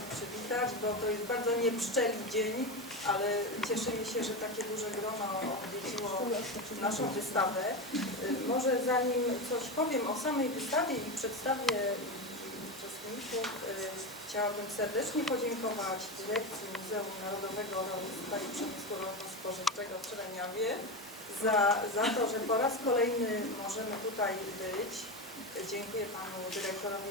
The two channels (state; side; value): normal; both; correlation 0.18